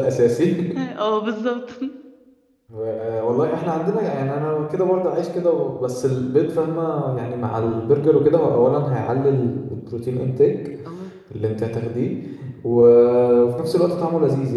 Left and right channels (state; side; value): identical; both; correlation 1.00